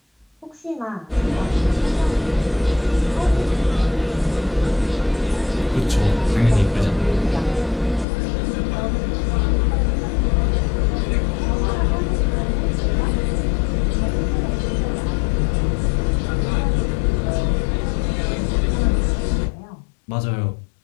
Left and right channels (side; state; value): right; drops out; at 8.1 s